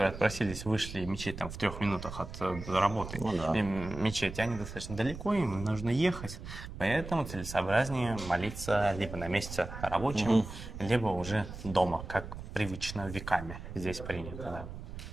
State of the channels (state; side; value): noise; right; rumble, 10 dB below the sound